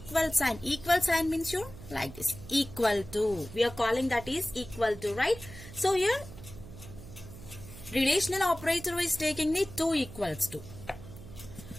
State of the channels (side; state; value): right; noise; hum, 15 dB below the sound